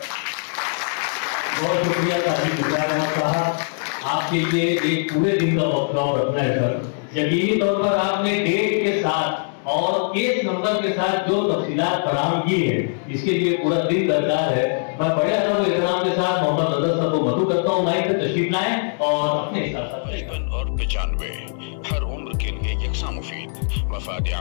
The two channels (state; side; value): silent; right; 64 dB below the other